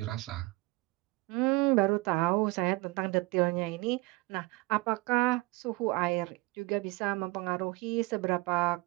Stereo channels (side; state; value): left; quieter; 23.6 dB